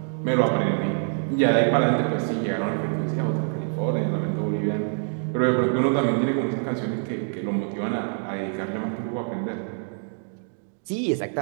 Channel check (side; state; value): left; silent; digital silence